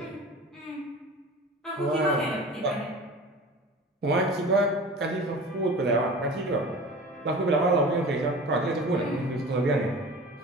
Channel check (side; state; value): both; normal; correlation 0.38